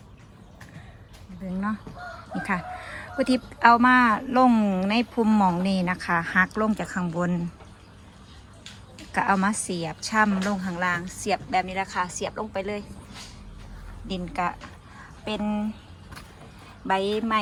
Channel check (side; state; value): both; identical; correlation 1.00